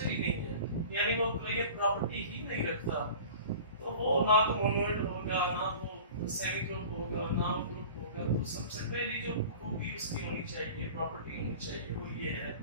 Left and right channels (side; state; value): both; inverted; correlation -0.40